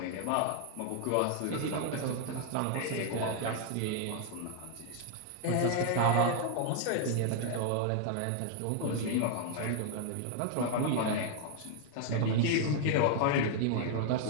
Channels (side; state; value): both; different; correlation 0.00